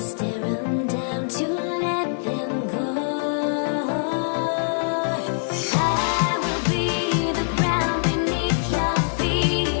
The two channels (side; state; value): right; silent; 63 dB below the other